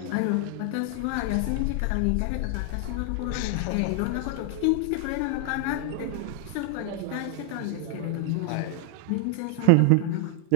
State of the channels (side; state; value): both; different; correlation 0.00